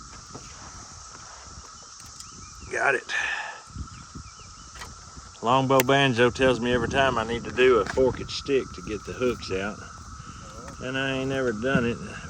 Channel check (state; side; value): identical; both; correlation 1.00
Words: Got it. Longbow Banjo tells me every time I need to do a forked stick to get the hooks out. And I ain't never done it.